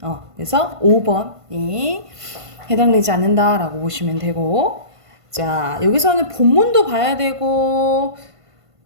그래서 5번이 해당되지 않는다라고 보시면 되고, 자, 여기서는 본문도 봐야 되고,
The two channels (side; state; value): left; late; 1.5 ms